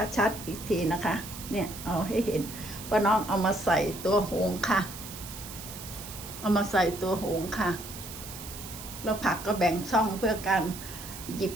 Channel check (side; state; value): right; noise; hiss, 12 dB below the sound